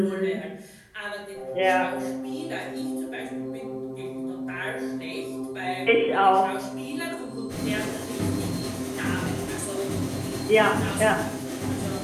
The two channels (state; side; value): identical; both; correlation 1.00